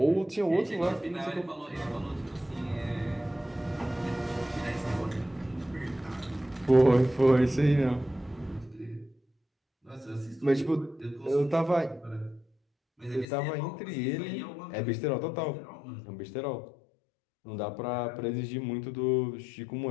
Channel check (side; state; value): right; drops out; at 13.2 s